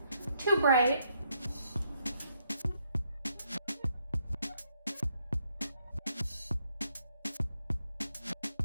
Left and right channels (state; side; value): inverted; both; correlation -0.74